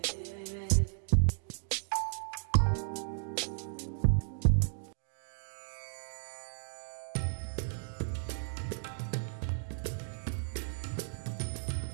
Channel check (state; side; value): silent; left; digital silence